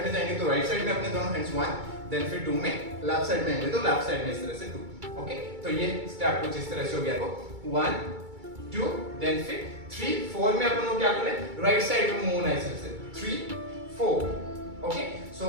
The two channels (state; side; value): late; left; 2.3 ms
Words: में जाएंगे तो राइट साइड में अपने दोनों हैंड्स 1, देन फिर 2 में लेफ्ट साइड में आएंगे तो लेफ्ट साइड में इस तरह से 2। ओके, तो ये स्टेप कुछ इस तरह से हो गया। तो 1 2, देन फिर 3 4 में अपन को क्या करना है, राइट साइड में मूव होना है इस तरह से 3 4। ओके, सो